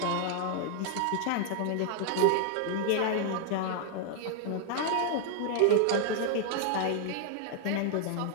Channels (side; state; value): both; different; correlation 0.00